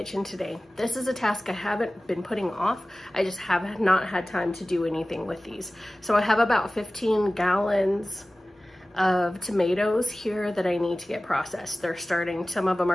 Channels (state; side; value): normal; both; correlation 0.97